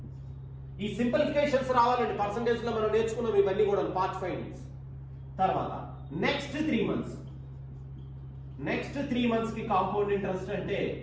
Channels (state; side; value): identical; both; correlation 1.00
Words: ఈ సింప్లిఫికేషన్స్ రావాలండి. పర్సంటేజ్ లో మనం నేర్చుకున్నాం ఇవన్నీ కూడా పార్ట్ ఫైండింగ్స్. తర్వాత నెక్స్ట్ 3 మంత్స్ కి కాంపౌండ్ ఇంట్రెస్ట్ అంటే